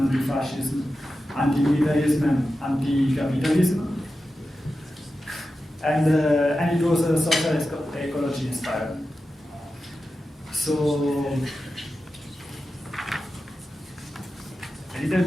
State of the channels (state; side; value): normal; both; correlation 0.92